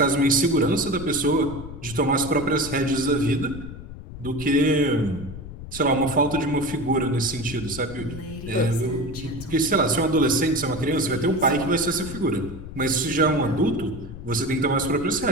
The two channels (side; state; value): left; noise; rumble, 12 dB below the sound